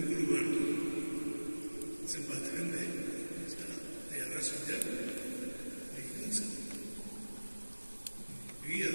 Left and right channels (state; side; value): inverted; both; correlation -1.00